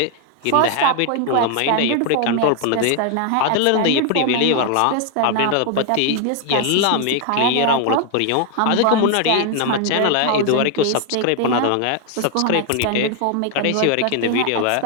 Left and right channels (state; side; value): different; both; correlation 0.00